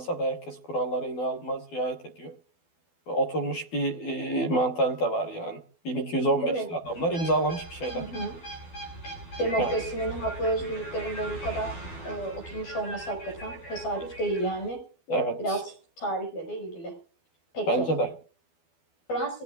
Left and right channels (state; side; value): late; right; 12 ms